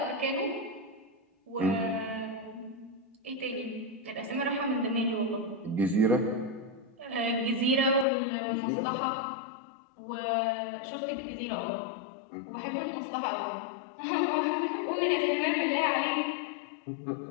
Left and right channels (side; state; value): right; drops out; at 8.1 s